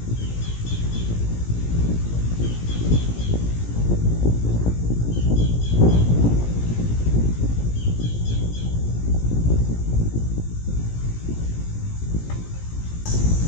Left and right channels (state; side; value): late; right; 17 ms